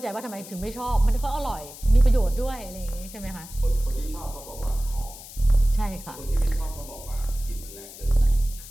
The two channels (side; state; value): left; noise; hiss, 15 dB below the sound